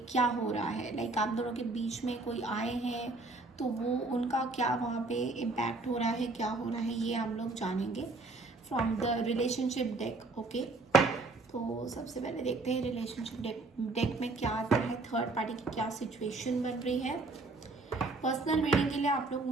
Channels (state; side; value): quieter; left; 3.4 dB